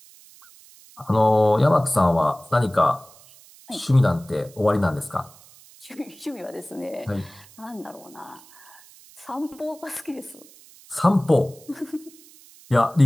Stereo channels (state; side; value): noise; right; hiss, 24 dB below the sound